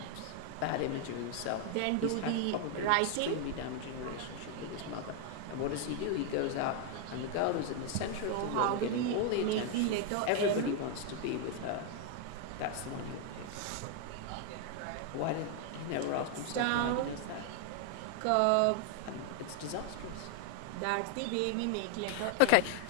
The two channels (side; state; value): both; different; correlation 0.00